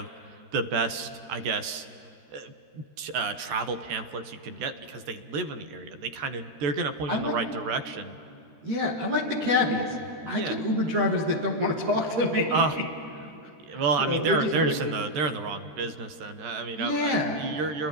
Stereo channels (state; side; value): late; left; 13 ms